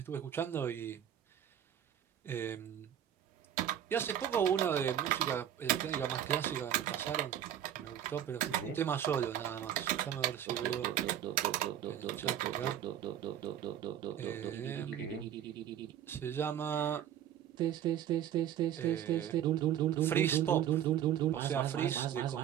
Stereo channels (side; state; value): left; quieter; 10.3 dB